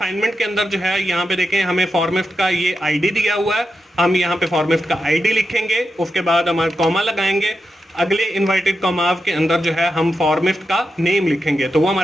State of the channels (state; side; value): normal; both; correlation 0.88